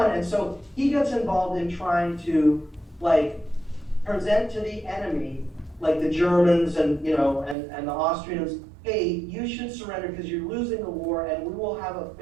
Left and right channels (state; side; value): drops out; left; at 7.6 s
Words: And so he gets involved in trying to present to the enemy, the Germans and the Austrians, hey, you should surrender because you're losing the war, and we will have a